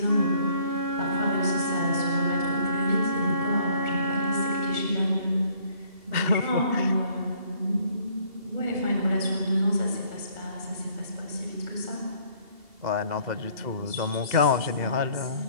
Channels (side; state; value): left; late; 2.7 ms